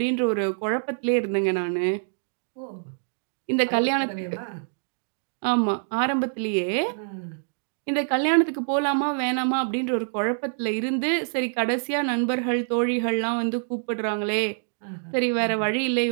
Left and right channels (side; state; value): left; silent; digital silence